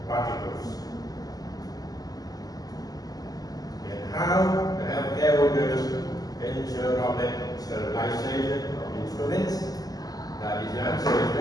particles. And how the healthcare workers ensure droplet sterilization of instruments? That is, the answer is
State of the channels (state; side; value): late; right; 0.18 ms